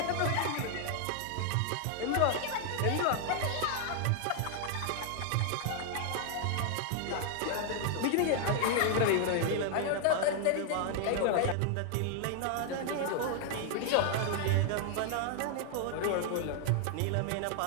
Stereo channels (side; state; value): both; different; correlation 0.00